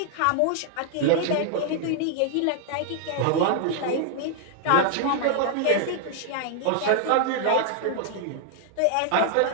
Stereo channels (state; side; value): different; both; correlation 0.00